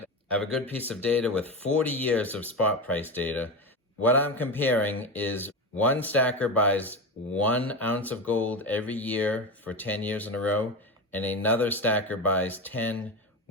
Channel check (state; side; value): normal; both; correlation 0.20